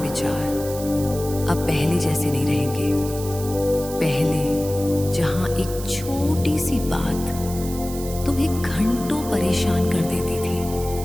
अब पहले जैसे नहीं रहेंगे। पहले जहां एक छोटी सी बात तुम्हें घंटों परेशान कर देती थी,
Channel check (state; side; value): noise; right; hiss, 12 dB below the sound